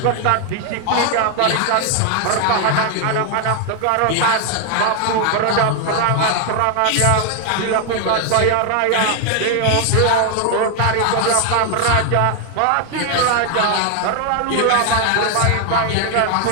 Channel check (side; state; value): both; different; correlation 0.01